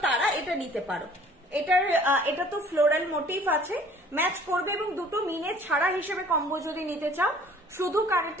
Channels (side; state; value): both; normal; correlation 0.53